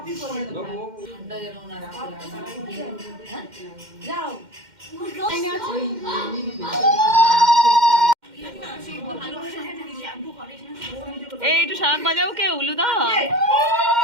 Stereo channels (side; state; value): left; late; 2.1 ms